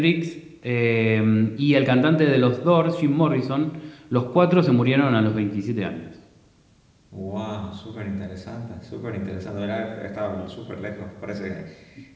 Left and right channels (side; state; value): both; identical; correlation 1.00